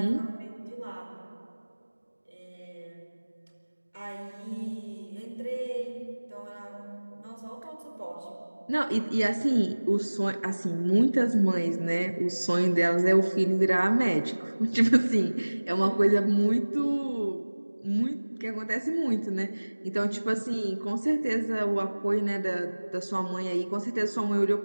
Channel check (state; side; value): inverted; both; correlation -1.00